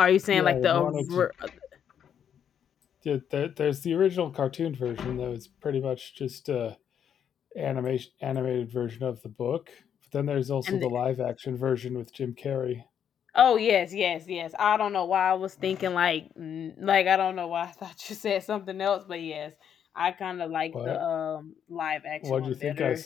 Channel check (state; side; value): quieter; right; 8.6 dB